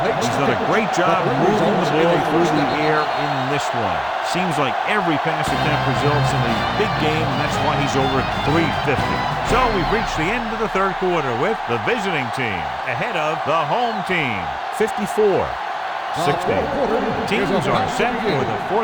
He's done a great job moving the ball through the air in this one. Seems like every pass attempt results in a big game, and that's why he's over 350. So we've reached the end of the third quarter with the visiting team ahead of the home team, 54-60. Teams are set for the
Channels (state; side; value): identical; both; correlation 1.00